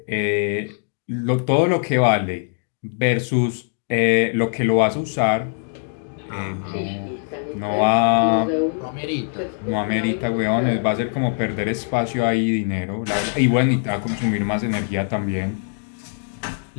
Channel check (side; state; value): right; silent; 58 dB below the other